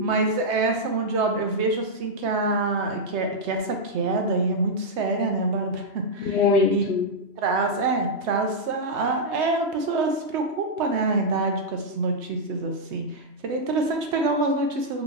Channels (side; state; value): left; late; 3.2 ms